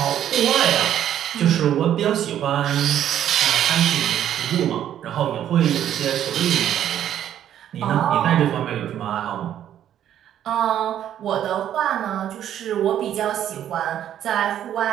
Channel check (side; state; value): left; quieter; 10.7 dB